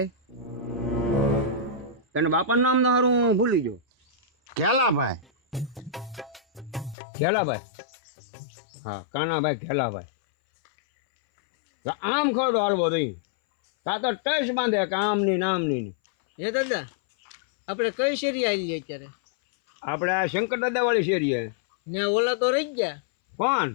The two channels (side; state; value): right; drops out; at 7.0 s